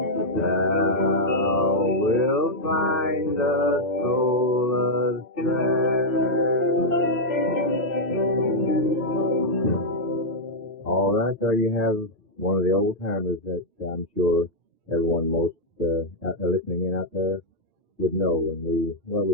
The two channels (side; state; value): both; normal; correlation -0.02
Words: Thou wilt find a solace there. All right, there you have one of the old timers that I'm sure everyone most listening in out there would know, and we